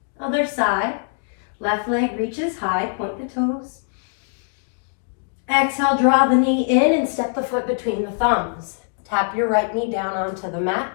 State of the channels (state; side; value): silent; right; digital silence